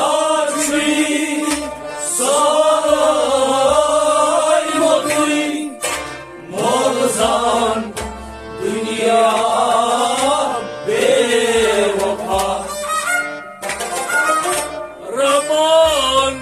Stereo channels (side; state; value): both; identical; correlation 1.00